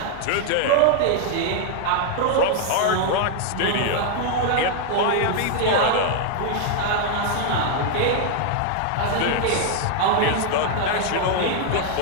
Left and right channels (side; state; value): both; different; correlation 0.00